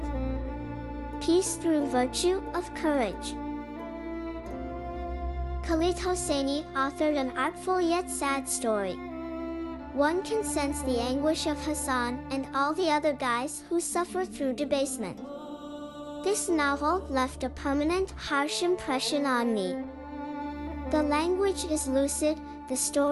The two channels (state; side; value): identical; both; correlation 1.00